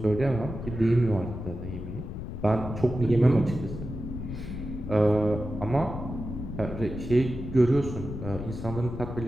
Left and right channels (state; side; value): noise; left; rumble, 8 dB below the sound